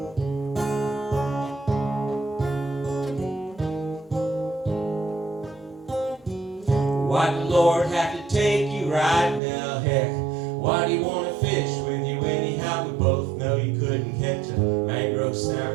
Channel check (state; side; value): drops out; left; at 9.4 s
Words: Why'd the Lord have to take throat